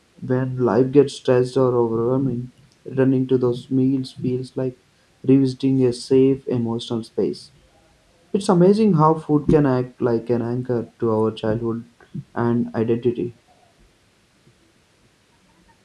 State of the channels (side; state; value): both; identical; correlation 1.00